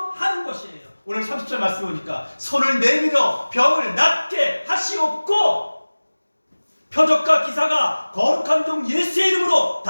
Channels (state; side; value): inverted; both; correlation -1.00